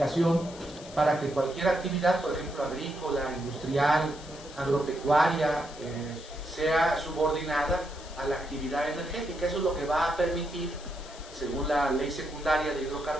para que cualquier actividad, por ejemplo agrícola, industrial, agropecuaria, sea subordinada a la actividad energética. Eso es lo que va a permitir, según la ley secundaria de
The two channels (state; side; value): noise; left; hiss, 18 dB below the sound